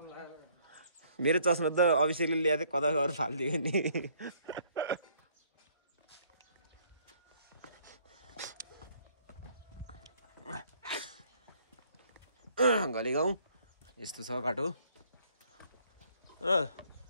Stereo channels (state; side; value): inverted; both; correlation -0.63